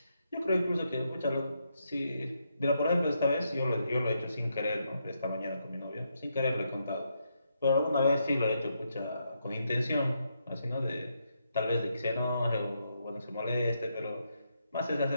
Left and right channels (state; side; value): inverted; both; correlation -0.80